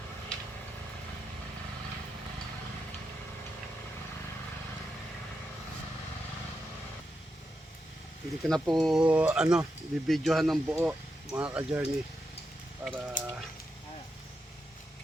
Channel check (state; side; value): normal; both; correlation 0.86